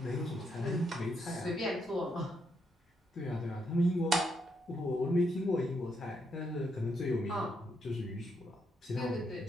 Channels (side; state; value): both; normal; correlation 0.77